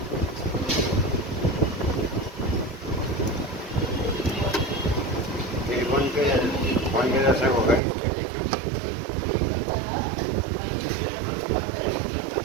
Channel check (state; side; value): drops out; left; at 7.8 s